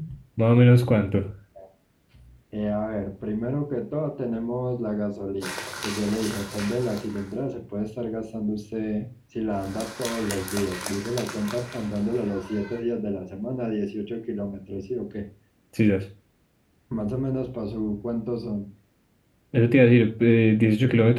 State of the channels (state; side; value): identical; both; correlation 1.00